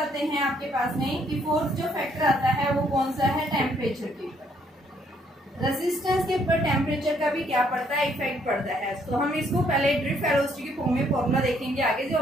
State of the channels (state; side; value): normal; both; correlation 0.68